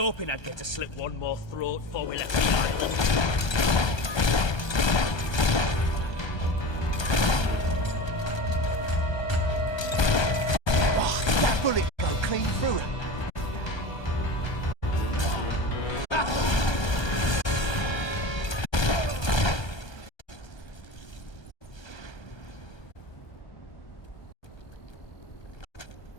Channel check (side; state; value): right; late; 1.3 ms